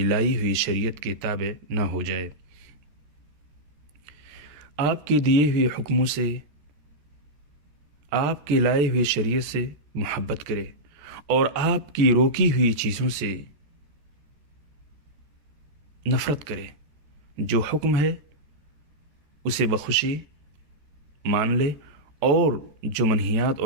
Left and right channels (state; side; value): late; left; 13 ms